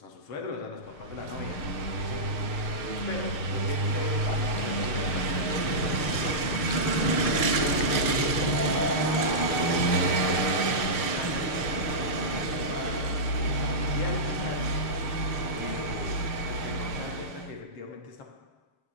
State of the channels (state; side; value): late; right; 6.7 ms